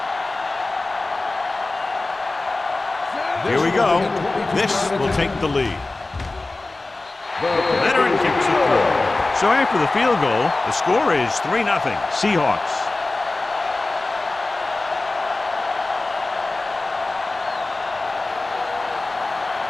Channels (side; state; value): right; quieter; 3.2 dB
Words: Here we go. This will take the lead. Veteran kicks it through. So after the field goal, the score is 3-0 Seahawks.